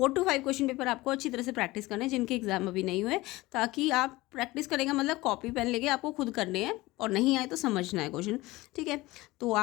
to 5 क्वेश्चन पेपर आपको अच्छी तरह से प्रैक्टिस करना है जिनके एग्जाम अभी नहीं हुए, ताकि आप प्रैक्टिस करेंगे मतलब कॉपी पेन लेके आपको खुद करने हैं और नहीं आए तो समझना है क्वेश्चन, ठीक है। तो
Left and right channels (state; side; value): quieter; right; 19.8 dB